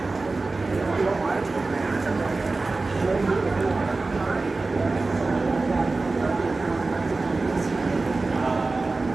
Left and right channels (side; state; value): left; quieter; 3.5 dB